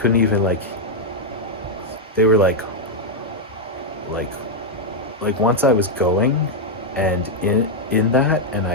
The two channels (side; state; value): both; normal; correlation -0.01